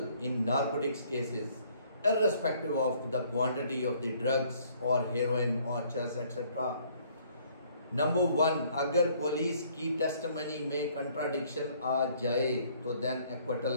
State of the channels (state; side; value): inverted; both; correlation -0.62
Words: in narcotics cases, irrespective of the quantity of the drugs or heroin or chess etc. Number 1, अगर police की testimony में contradiction आ जाए तो then